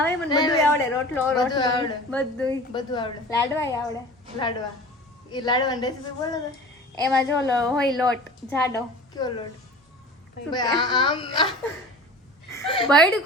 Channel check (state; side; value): normal; both; correlation 0.39